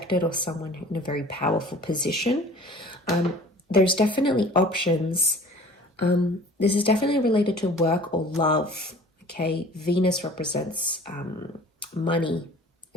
or someone in a very powerful position. There's definitely options. This is definitely related to work or love. Okay, Venus represents money,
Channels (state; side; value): normal; both; correlation 0.47